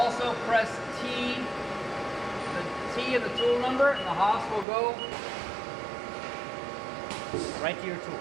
pressed T, the T and the tool number, and the Haas will go right to your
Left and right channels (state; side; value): drops out; left; at 4.7 s